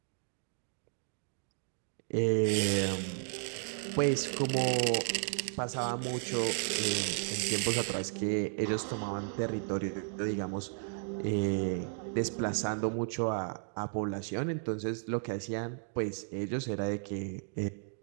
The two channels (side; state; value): left; silent; digital silence